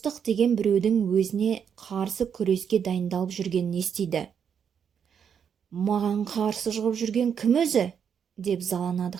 деген біреудің өзіне қарсы күреске дайындалып жүргенін естиді. «Маған қарсы шығып жүрген кім өзі?» деп заланады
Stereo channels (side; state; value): left; quieter; 7.6 dB